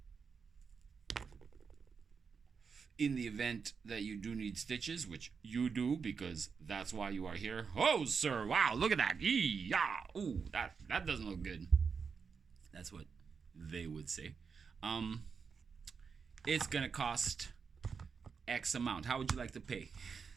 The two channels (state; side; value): quieter; left; 5.7 dB